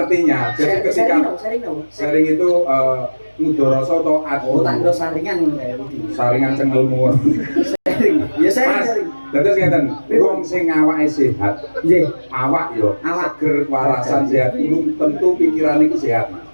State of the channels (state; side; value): inverted; both; correlation -1.00